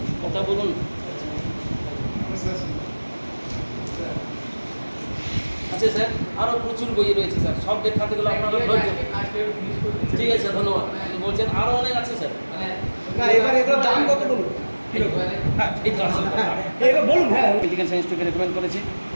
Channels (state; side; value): inverted; both; correlation -1.00